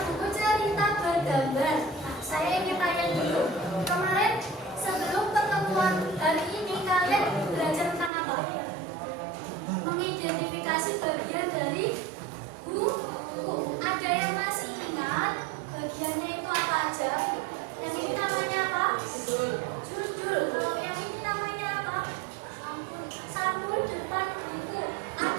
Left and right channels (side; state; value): left; drops out; at 8.1 s